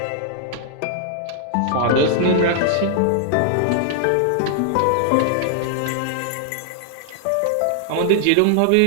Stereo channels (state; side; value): different; both; correlation 0.00